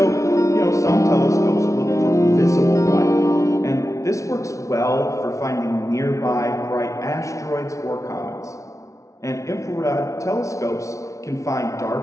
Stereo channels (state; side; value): late; right; 0.15 ms